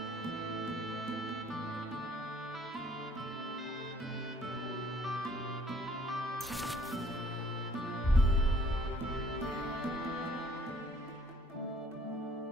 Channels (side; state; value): both; normal; correlation 0.59